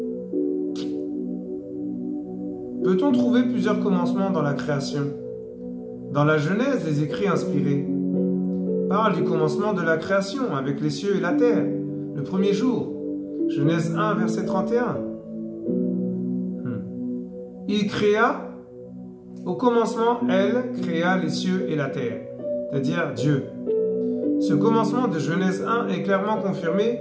Peut-on trouver plusieurs commencements dans la création? Dans la Genèse, les écrits inspirés parlent du commencement de la création avec les cieux et la terre, le premier jour. Genèse 1, verset 31. Il créa, au commencement, elle créa les cieux et la terre, c'est-à-dire Dieu. Ce commencement de Genèse 1 est clairement confirmé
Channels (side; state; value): both; identical; correlation 1.00